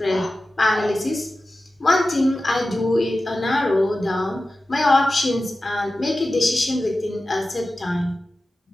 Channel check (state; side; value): normal; both; correlation 0.94